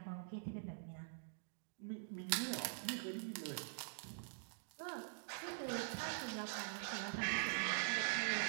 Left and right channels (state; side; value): silent; left; digital silence